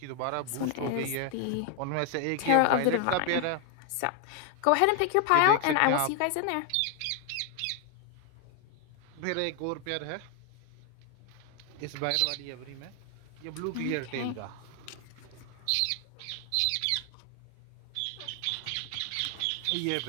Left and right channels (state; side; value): different; both; correlation 0.00